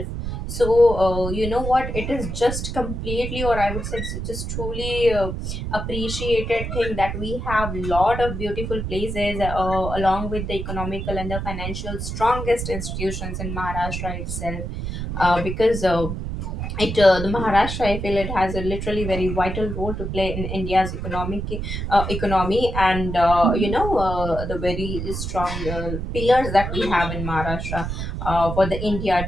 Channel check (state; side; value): noise; right; rumble, 5 dB below the sound